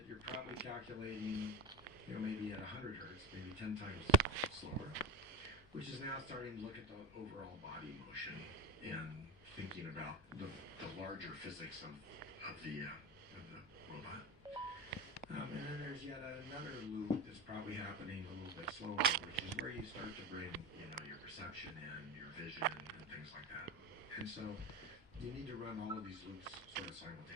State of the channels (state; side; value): normal; both; correlation 0.29